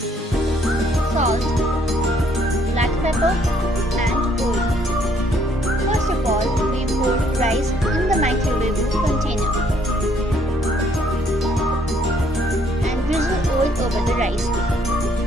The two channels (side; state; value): both; normal; correlation 0.67